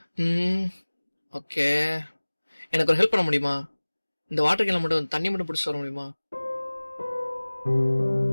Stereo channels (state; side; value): inverted; both; correlation -1.00